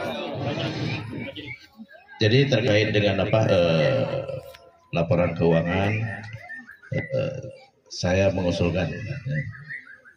Jadi terkait dengan laporan keuangan, saya mengusulkan.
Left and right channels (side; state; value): both; identical; correlation 1.00